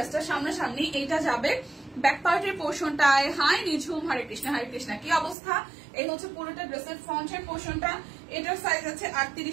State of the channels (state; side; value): drops out; left; at 5.4 s